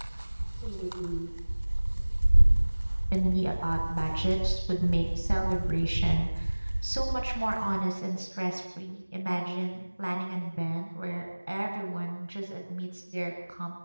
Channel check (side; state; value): both; inverted; correlation -1.00